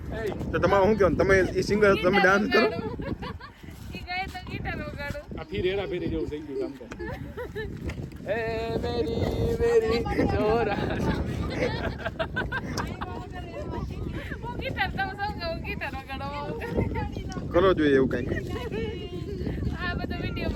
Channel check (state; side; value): identical; both; correlation 1.00